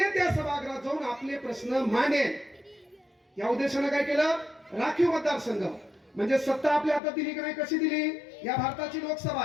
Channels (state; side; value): drops out; right; at 7.0 s